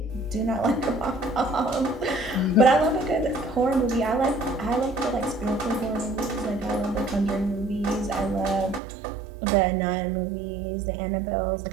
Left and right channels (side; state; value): left; drops out; at 8.8 s